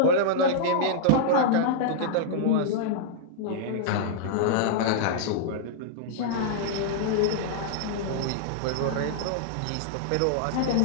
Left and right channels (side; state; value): both; different; correlation -0.01